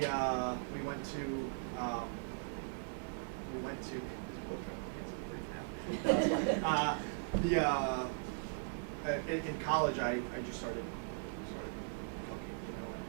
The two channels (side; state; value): left; silent; digital silence